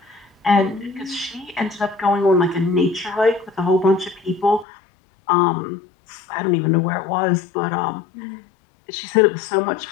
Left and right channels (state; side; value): drops out; right; at 4.7 s